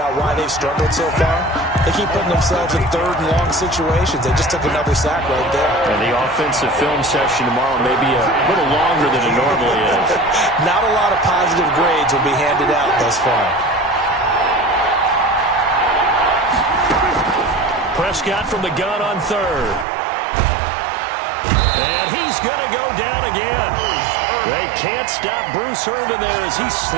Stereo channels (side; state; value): left; drops out; at 19.9 s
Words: why they've struggled so far. They keep putting themselves in 3rd and long situations. They just took another sack right there. And the offensive film session tomorrow may be a little longer than it normally is. Not a lot of positive grades will be handed out thus far. Prescott from the gun on 3rd. And he's going to go down again. They can't stop Bruce Irvin there as he